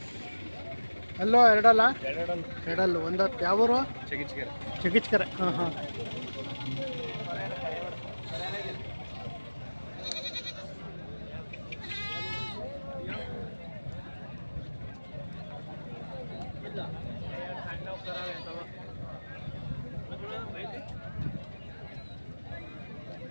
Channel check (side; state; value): both; inverted; correlation -1.00